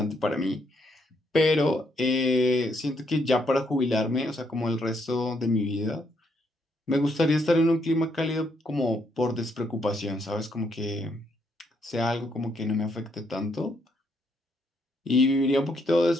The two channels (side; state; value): both; normal; correlation 0.74